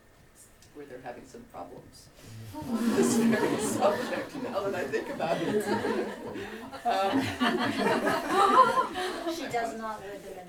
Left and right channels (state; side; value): identical; both; correlation 1.00